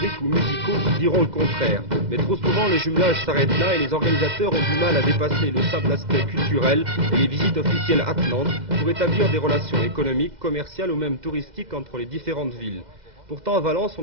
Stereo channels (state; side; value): late; left; 2.0 ms